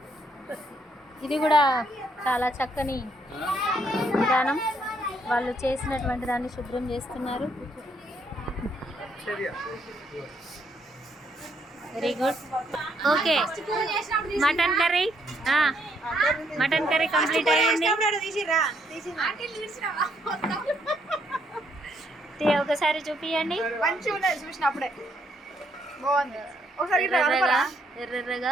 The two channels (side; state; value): both; normal; correlation 0.72